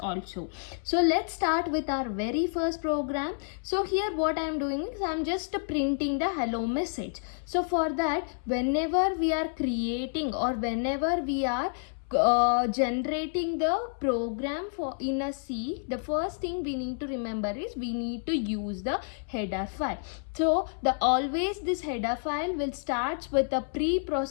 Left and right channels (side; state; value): right; silent; 58 dB below the other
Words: So let's start with our very first program. So here what I am doing is I am just printing the hello message. So for that, whenever we are creating or whenever we are generating the program for in a C, the first thing we need to remember is we need to use the header file. So always this header file will start with a